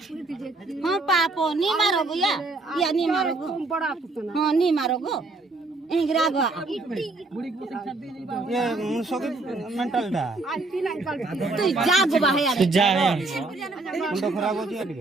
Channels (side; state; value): left; quieter; 3.2 dB